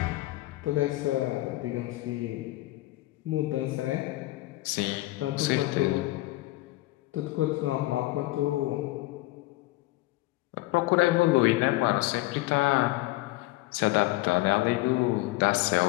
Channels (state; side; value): quieter; right; 19.2 dB